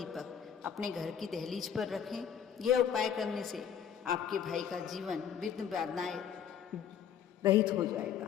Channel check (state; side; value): quieter; right; 8.4 dB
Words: अपने घर की दहलीज पर रखें। यह उपाय करने से आपके भाई का जीवन विघ्न बाधाएं रहित हो